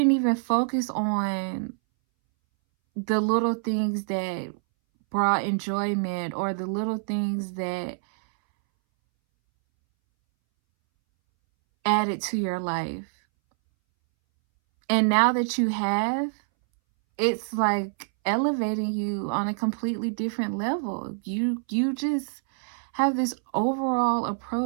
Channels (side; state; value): left; silent; 61 dB below the other